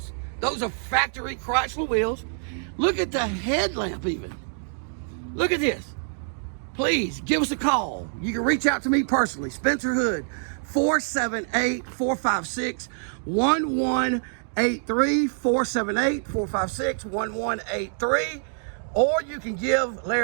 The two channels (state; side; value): silent; left; digital silence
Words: Those are factory Chrysler wheels. Look at the headlamp even. Look at this. Please give us a call. You can reach out to me personally, Spencer Hood, 478-456-1183, 478-456-1183. Or you can give